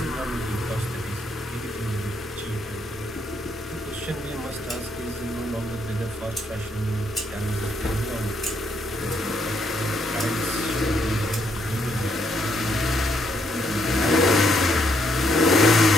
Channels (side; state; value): both; normal; correlation 0.74